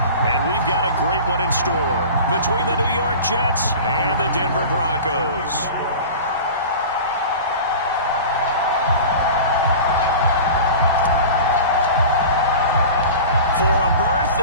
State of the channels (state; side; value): inverted; both; correlation -0.36